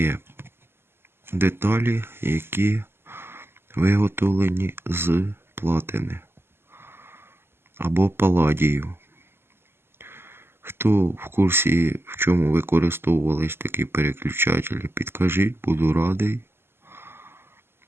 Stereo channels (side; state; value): left; late; 0.11 ms